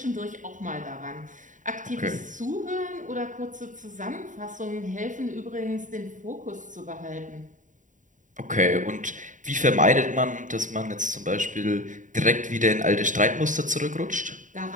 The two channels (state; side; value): late; left; 0.37 ms